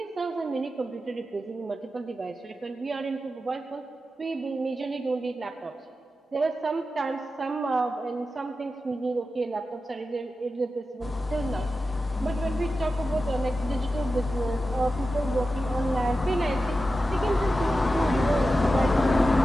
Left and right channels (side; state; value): both; normal; correlation 0.92